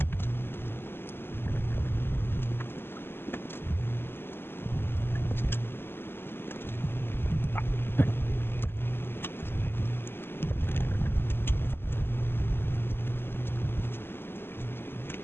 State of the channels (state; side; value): late; right; 0.11 ms